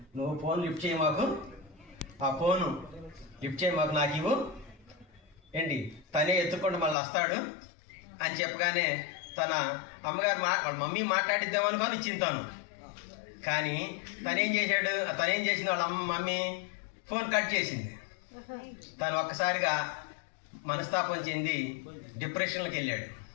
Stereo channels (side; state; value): right; drops out; at 7.0 s